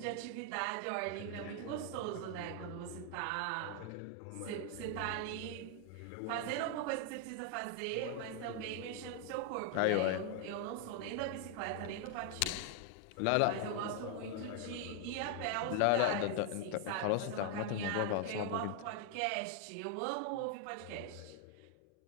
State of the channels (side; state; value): both; different; correlation 0.00